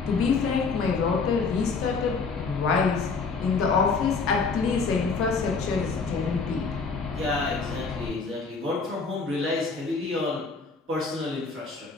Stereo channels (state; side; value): quieter; right; 4.6 dB